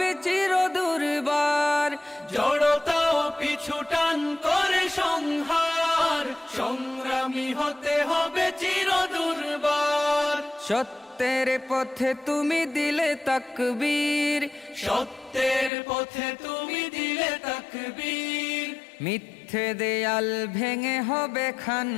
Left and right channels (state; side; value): drops out; right; at 15.7 s